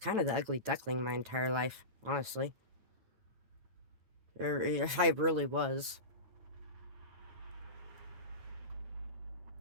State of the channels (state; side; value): late; left; 9.2 ms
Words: of the ugly duckling my entire life, honestly. I really was.